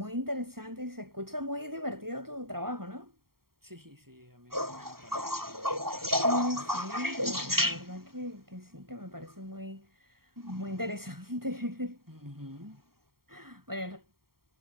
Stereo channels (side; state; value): left; late; 0.93 ms